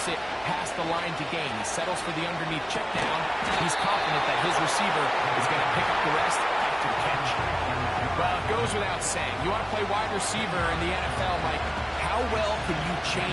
it past the line to gain. He settles for the underneath check down. He's confident that his receiver is going to pick up the rest after the catch. Well, it goes without saying. You want to play wide receiver in the NFL, Mike, how well can you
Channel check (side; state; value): both; identical; correlation 1.00